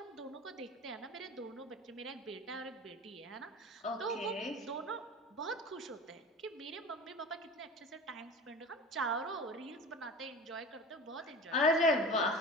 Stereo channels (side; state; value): both; normal; correlation 0.35